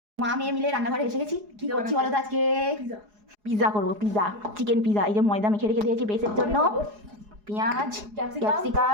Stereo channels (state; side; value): late; left; 4.8 ms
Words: মা মেয়ে মিলে রান্নাঘরে এসে গেছি। কি করছি বলো তো আজকে? পিজা করবো, পিজা, চিকেন পিজা। এই যে ময়দা মেখে রেখে দিয়েছি বেসের জন্য, পেঁয়াজ,